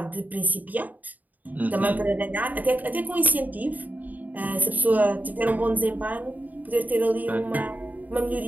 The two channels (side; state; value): left; late; 0.080 ms